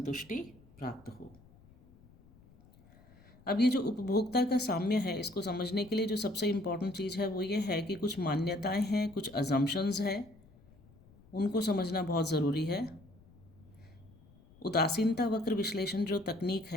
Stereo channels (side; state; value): left; noise; rumble, 26 dB below the sound